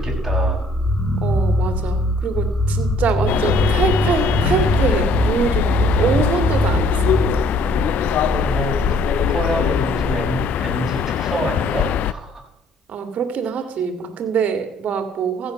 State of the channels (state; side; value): normal; both; correlation 0.60